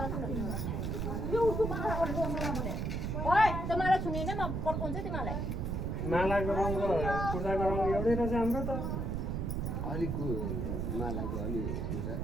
ओइ त्यो माला छुनिन म पड्काउँछु तिमीलाई मालाको रङ र कुर्ताको रङ एउटै रहेछ हाम्रो त अलिक मालाको अलि हुन्छ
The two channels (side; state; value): right; noise; rumble, 1 dB below the sound